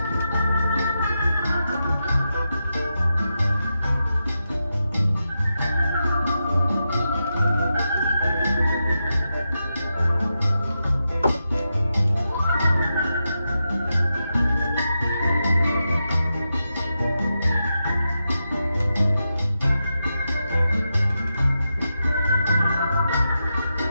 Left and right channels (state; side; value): inverted; both; correlation -0.88